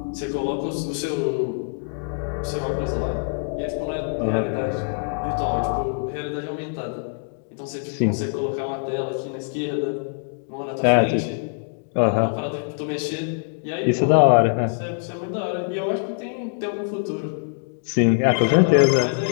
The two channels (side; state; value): right; silent; 63 dB below the other